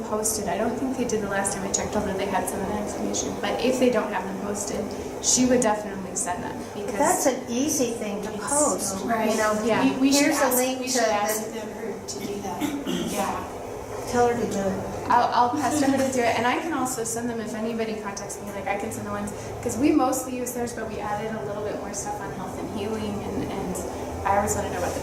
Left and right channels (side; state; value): both; identical; correlation 1.00